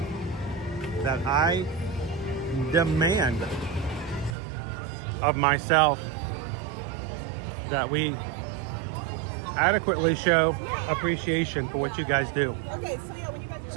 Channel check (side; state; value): left; drops out; at 4.4 s